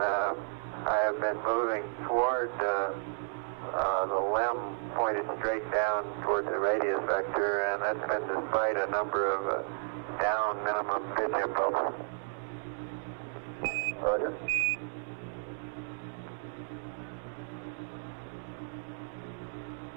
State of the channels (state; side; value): silent; left; digital silence